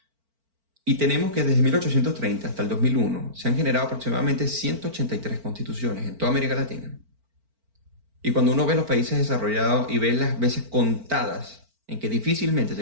y tenemos que desde 1830 hasta el 2001 se han generado aproximadamente 183 constituciones en toda América Latina. Y cuando uno ve los países desarrollados y ve las veces contadas en que difícilmente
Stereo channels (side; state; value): left; late; 4.4 ms